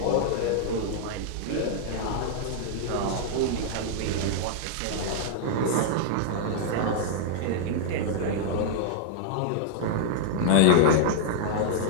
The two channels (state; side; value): different; both; correlation -0.01